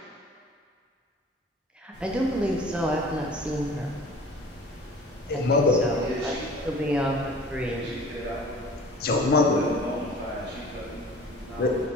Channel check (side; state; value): both; normal; correlation 0.45